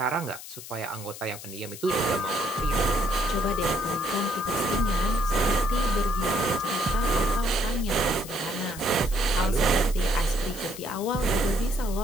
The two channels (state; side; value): noise; left; hiss, 13 dB below the sound